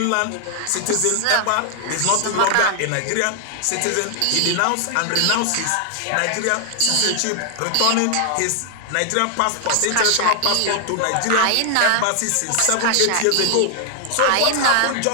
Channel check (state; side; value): different; both; correlation 0.00